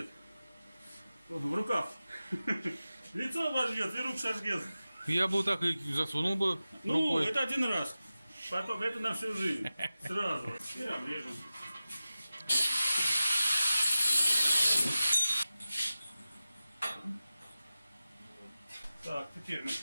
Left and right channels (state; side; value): inverted; both; correlation -0.95